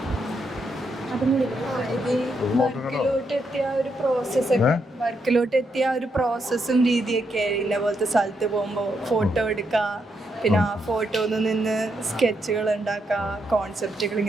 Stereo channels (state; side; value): normal; both; correlation 0.80